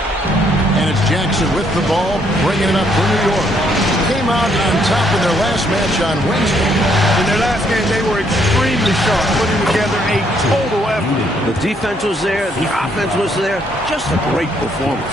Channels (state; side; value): normal; both; correlation 0.70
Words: And it's Jackson with the ball, bringing it up for New York. Came out on top in their last match on Wednesday. In their last game, they were extremely sharp, putting together a total effort. The defense was there. The offense was there. Just a great performance.